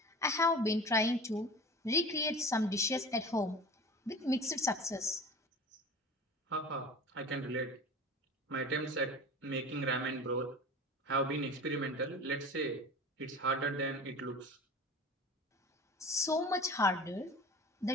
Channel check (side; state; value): both; normal; correlation 0.36